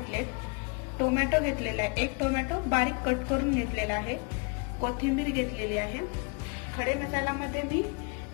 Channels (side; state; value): right; quieter; 33.7 dB